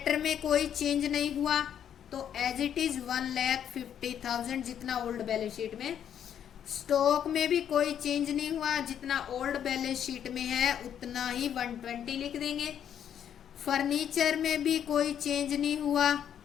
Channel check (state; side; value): quieter; right; 9.3 dB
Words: में कोई चेंज नहीं हुआ, तो एज इट इज 1,50,000 जितना ओल्ड बैलेंस शीट में। स्टॉक में भी कोई चेंज नहीं हुआ, जितना ओल्ड बैलेंस शीट में है उतना ही 120 लिख देंगे। फर्नीचर में भी कोई चेंज नहीं हुआ,